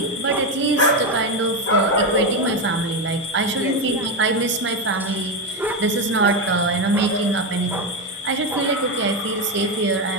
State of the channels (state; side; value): normal; both; correlation 0.10